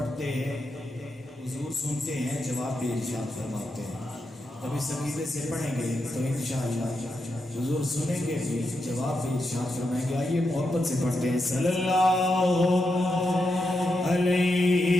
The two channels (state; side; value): normal; both; correlation 0.85